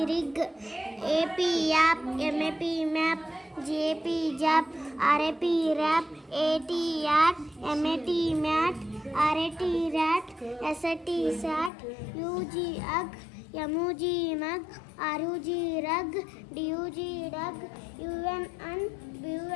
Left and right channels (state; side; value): drops out; right; at 11.7 s